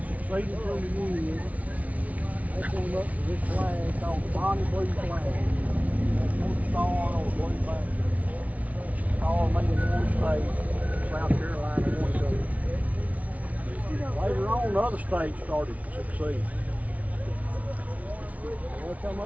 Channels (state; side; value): late; left; 0.069 ms